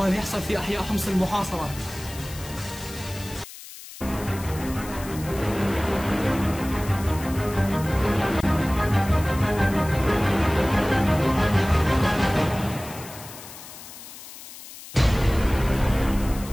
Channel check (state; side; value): noise; left; hiss, 15 dB below the sound